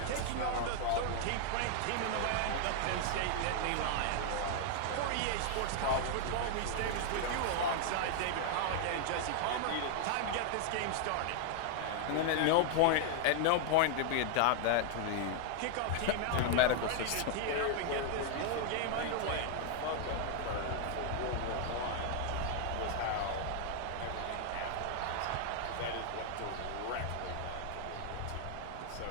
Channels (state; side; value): different; both; correlation 0.00